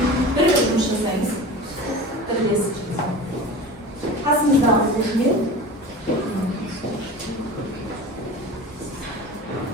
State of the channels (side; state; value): both; normal; correlation 0.34